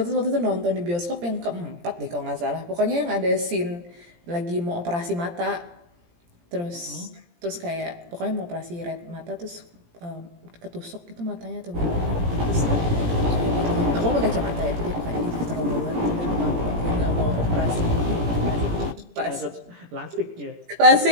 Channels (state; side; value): late; left; 17 ms